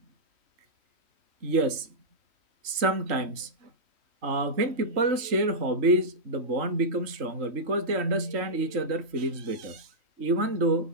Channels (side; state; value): left; late; 3.1 ms